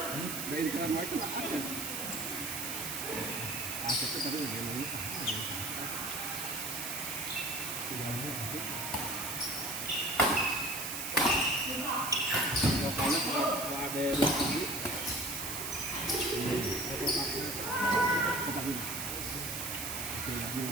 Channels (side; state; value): right; noise; hiss, 4 dB below the sound